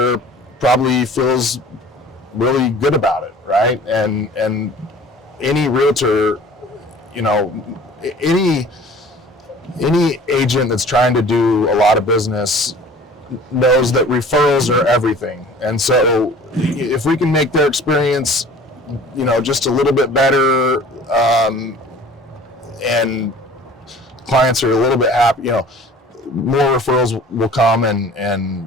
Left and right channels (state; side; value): normal; both; correlation 0.46